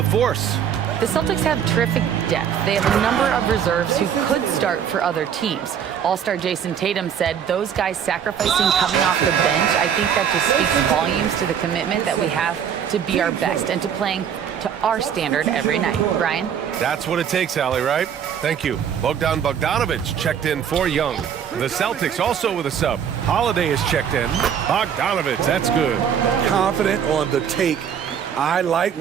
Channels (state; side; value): quieter; left; 8.3 dB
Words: The Celtics have terrific depth. They have a number of reserves who could start for other teams. All-star Jason Tatum said those guys sacrificing coming off the bench, I think that just speaks volumes to the commitment that we have to be our best and to playing to our standard every night. Brian? That's what it takes, Allie, right? Thank you. Bogdan Bogdanovic checked in for Young. The Celtics also with a sub. Holiday is checked in. Bogdanovic, that's good. Confident on the take. I like